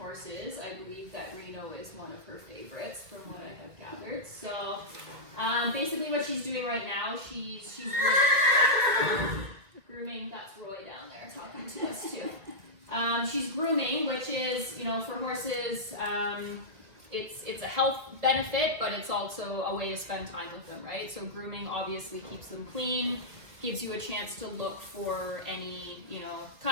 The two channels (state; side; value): late; left; 2.2 ms